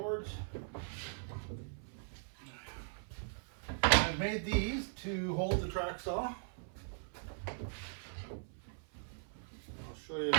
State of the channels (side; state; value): left; silent; 51 dB below the other